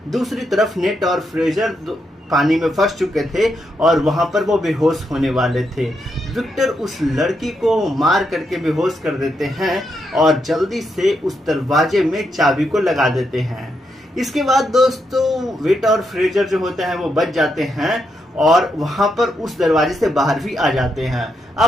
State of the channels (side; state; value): both; normal; correlation 0.81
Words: दूसरी तरफ नेट और फ्रेशर पानी में फंस चुके थे और वहां पर वो बेहोश होने वाले थे। विक्टर उस लड़की को मार करके बेहोश कर देते हैं और जल्दी से उस दरवाजे में चाबी को लगा देते हैं। इसके बाद दोस्तों वेट और फ्रेजर जो होते हैं वो बच जाते हैं और वहां पर उस दरवाजे से बाहर भी आ जाते हैं।